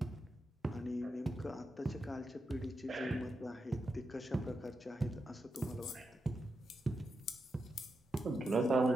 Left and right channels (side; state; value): both; normal; correlation 0.87